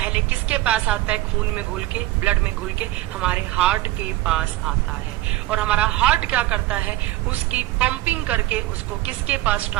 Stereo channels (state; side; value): quieter; left; 16.9 dB